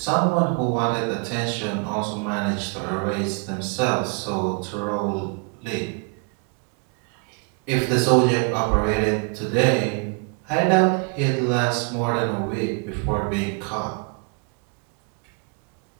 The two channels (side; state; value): left; quieter; 35.2 dB